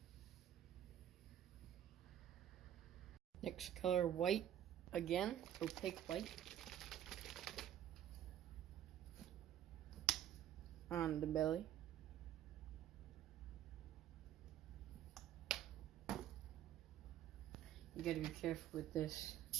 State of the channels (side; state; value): left; quieter; 11.2 dB